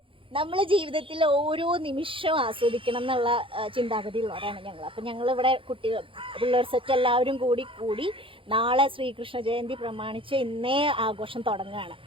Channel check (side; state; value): left; late; 0.25 ms